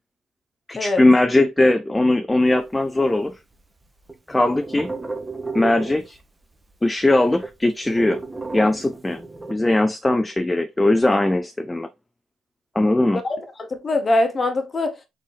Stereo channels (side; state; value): both; normal; correlation 0.96